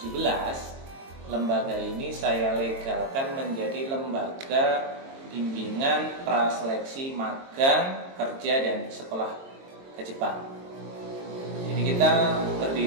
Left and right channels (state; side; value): late; left; 22 ms